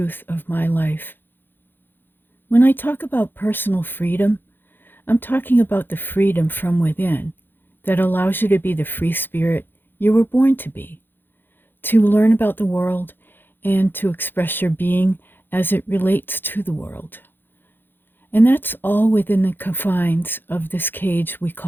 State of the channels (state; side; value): late; right; 0.098 ms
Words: of my life. When I talk about personal freedom, I'm talking about the freedom from within that allows you to be the free spirit you were born to be, to learn about the world, and to express your being as it relates to the world. And that's all within the confines of this cage we